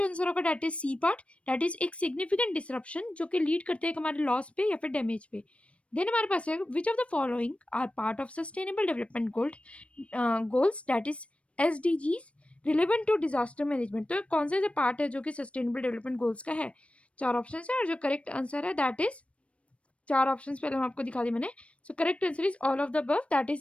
आंसर होगा that is C part, that is एक सिग्निफिकेंट डिसरप्शन जो कि लीड करते हैं हमारे लॉस पे या फिर डैमेज पे। देन हमारे पास है, which of the following are part of sustainable development goals that is SDGs relevant to disaster management. तो कौन से पार्ट है जो कि सस्टेनेबल डेवलपमेंट गोल्स का है। चार ऑप्शन है और जो करेक्ट आंसर है दैट इज, चार ऑप्शंस पहले हम आपको दिखा दी मैंने। So correct answer is all of the above, that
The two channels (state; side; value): late; right; 0.062 ms